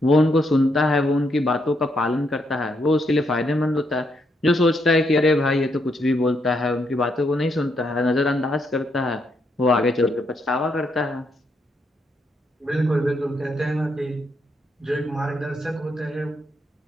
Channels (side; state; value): both; normal; correlation 0.77